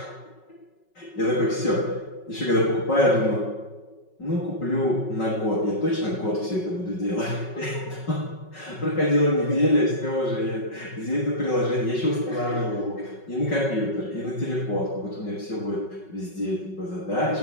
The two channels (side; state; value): right; late; 5.4 ms